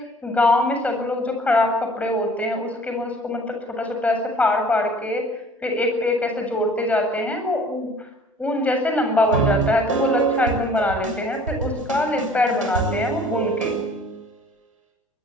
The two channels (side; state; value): both; normal; correlation 0.51